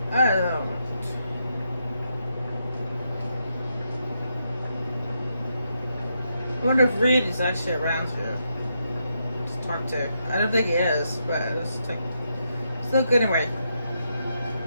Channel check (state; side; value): inverted; both; correlation -0.81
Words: I don't know. I wonder if Reed is actually around here to talk to. I don't think he is, but it's like, still good anyway.